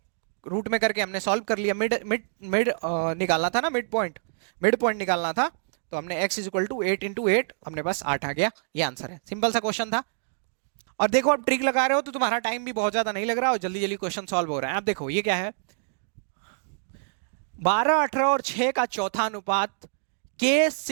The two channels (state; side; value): silent; left; digital silence